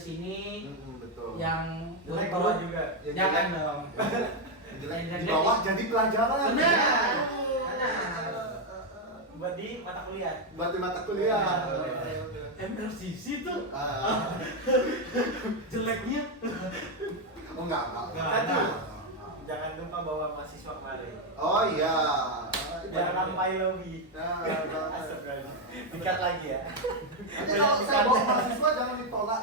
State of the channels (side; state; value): both; normal; correlation 0.04